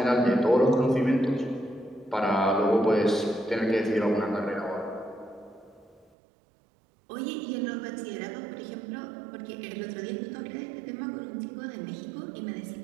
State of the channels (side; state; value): left; drops out; at 6.1 s